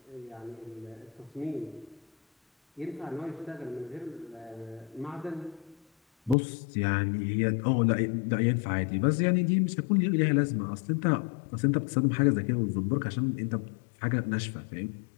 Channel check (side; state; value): right; drops out; at 6.4 s